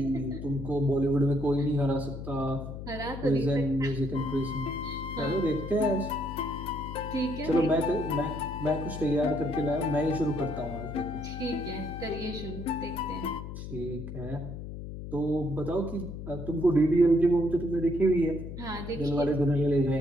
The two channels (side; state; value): left; noise; hum, 9 dB below the sound